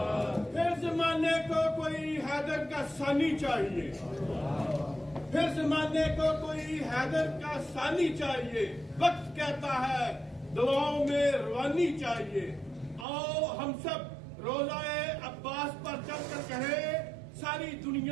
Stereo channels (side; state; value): left; drops out; at 13.1 s